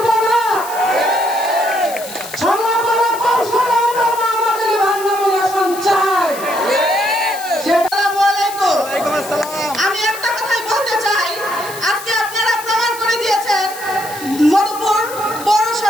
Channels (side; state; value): left; noise; hiss, 13 dB below the sound